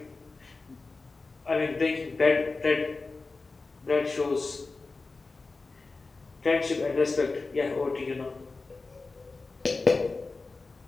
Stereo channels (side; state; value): right; quieter; 3.8 dB